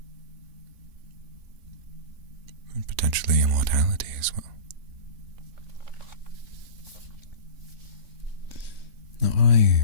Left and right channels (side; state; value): left; late; 3.6 ms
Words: And potentially immortality as well. Now